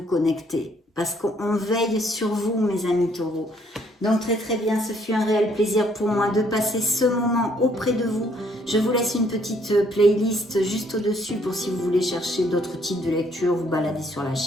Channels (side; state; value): both; normal; correlation 0.66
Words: connecter parce qu'on veille sur vous mes amis taureaux. Donc très bien, ce fut un réel plaisir pour moi de passer ce moment auprès de vous. Je vous laisse une petite playlist juste au-dessus pour si vous voulez chercher d'autres types de lectures, vous balader sur la